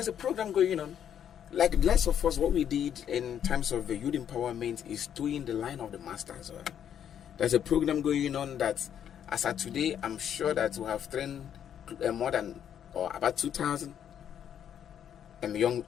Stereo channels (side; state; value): right; quieter; 9.3 dB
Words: a program going on. Like the last of us, what we did in terms of the youth empowerment is doing the line of the masters. Right? There's a program going on that. As of today, I'm sure that we have trained more than about 2,000